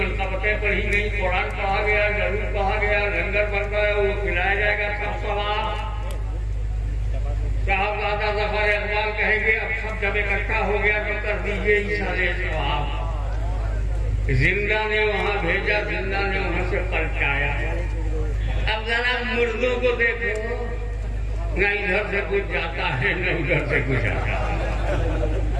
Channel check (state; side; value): identical; both; correlation 1.00